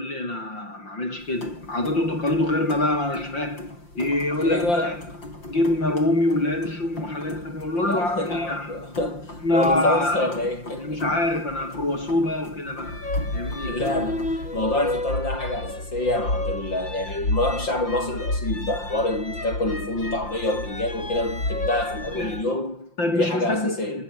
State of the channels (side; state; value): right; late; 5.8 ms